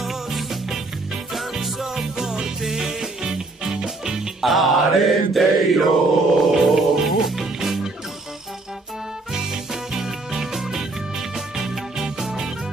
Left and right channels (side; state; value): left; quieter; 3.2 dB